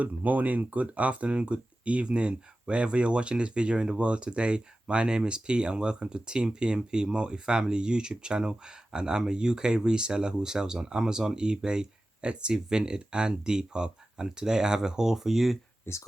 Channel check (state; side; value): normal; both; correlation 0.95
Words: morning, good afternoon, good evening, wherever you're watching this video in the world today. My name is Pete and welcome to Team PMP Multifamily YouTube channel, and I'm a UK reseller who sells on Amazon, eBay, Etsy, Vinted and Depop. And today I have a haul for you. It's